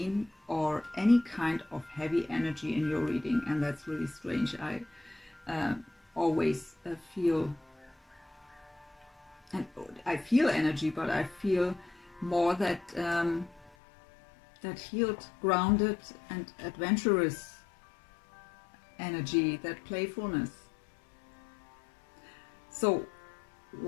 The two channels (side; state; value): right; drops out; at 13.7 s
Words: or any kind of heavy energy in your reading. And that's really strange. I always feel, and I feel energy, but I feel more that that healed, grounded and adventurous energy, that playfulness. So